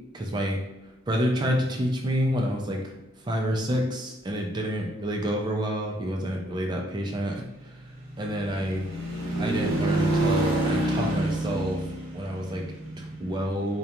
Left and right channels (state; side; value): normal; both; correlation 0.69